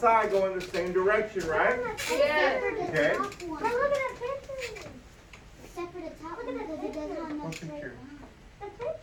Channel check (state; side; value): identical; both; correlation 1.00